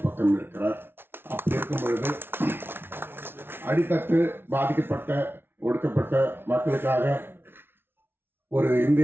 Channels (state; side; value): late; left; 0.11 ms